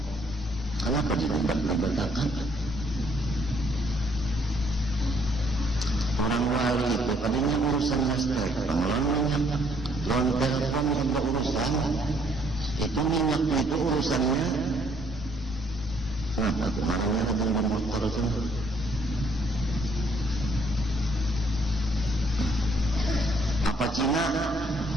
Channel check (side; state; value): both; normal; correlation 0.66